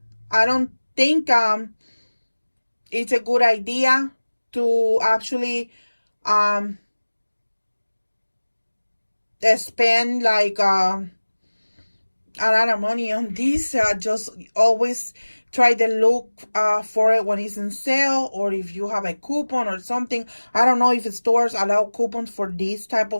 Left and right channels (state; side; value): inverted; both; correlation -1.00